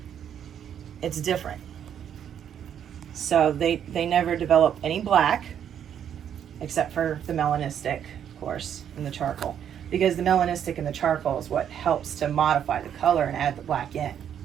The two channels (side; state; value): left; quieter; 9.1 dB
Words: it's different. So they never develop any black, except for the melanistic, of course, and the charcoal. Because the melanistic and the charcoal is what helps to modify the color and add the black in.